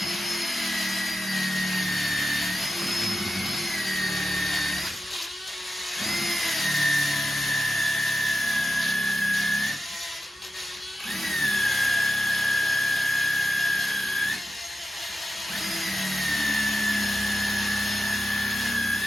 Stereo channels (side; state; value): both; normal; correlation 0.91